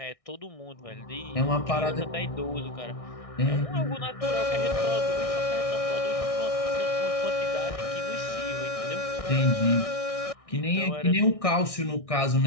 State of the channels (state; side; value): late; right; 1.6 ms